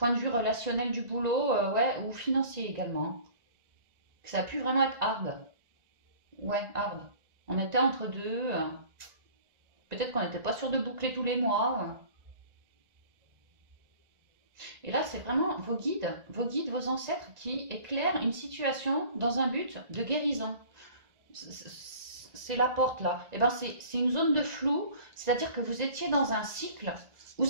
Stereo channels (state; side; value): late; left; 1.9 ms